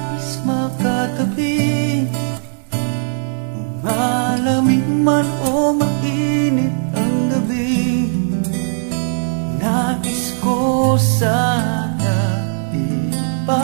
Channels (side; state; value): left; silent; digital silence